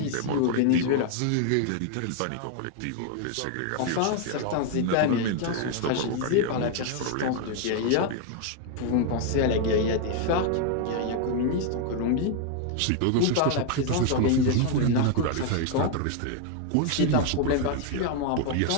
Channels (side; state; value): both; different; correlation 0.00